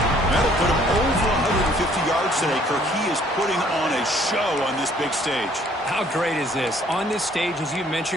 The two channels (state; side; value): normal; both; correlation 0.60